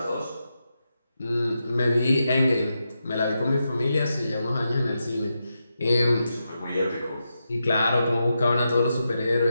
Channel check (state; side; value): inverted; both; correlation -0.87